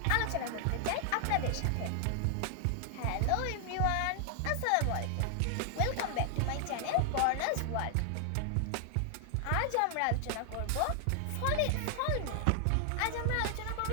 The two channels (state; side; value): different; both; correlation 0.00